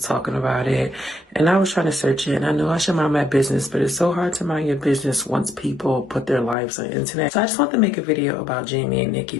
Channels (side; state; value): right; drops out; at 6.6 s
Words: talking about it, and I was trying to search it, and I know I should mind my business, but it's so hard to mind your business once people put their lives on the internet. So I just want to make a video about Jamie and Nikki